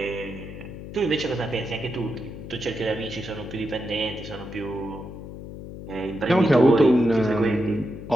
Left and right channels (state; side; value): noise; left; hum, 11 dB below the sound